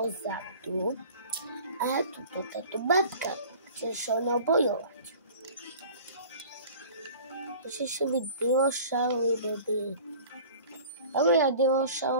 A tu táto babka chce sa mnou bojovať. Ešte si byť dinošaury, baby. Ale ja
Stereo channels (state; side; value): inverted; both; correlation -0.44